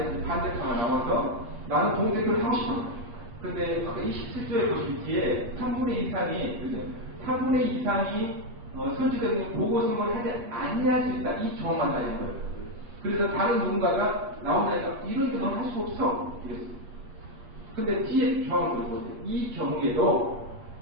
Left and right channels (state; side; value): late; left; 8.7 ms